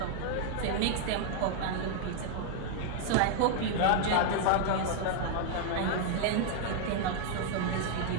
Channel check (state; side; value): different; both; correlation 0.00